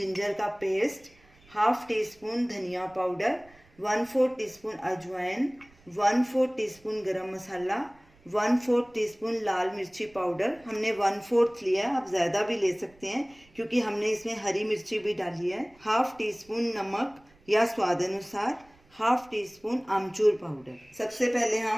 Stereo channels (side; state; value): right; noise; rumble, 29 dB below the sound